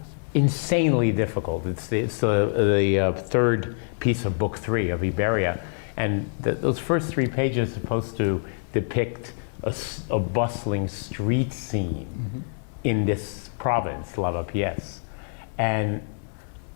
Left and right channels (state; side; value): silent; right; digital silence